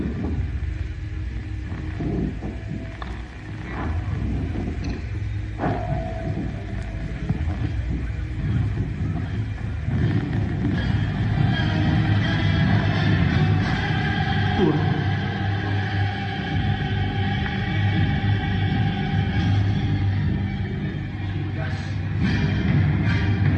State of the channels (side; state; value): both; identical; correlation 1.00